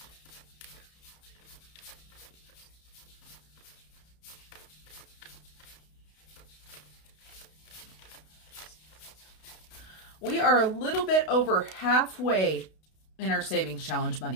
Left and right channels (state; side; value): late; right; 32 ms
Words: We are a little bit over halfway in our savings challenge